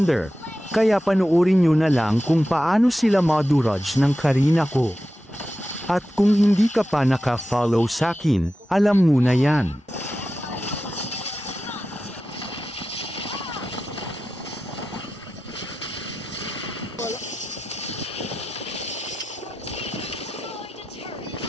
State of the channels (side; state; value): both; normal; correlation 0.92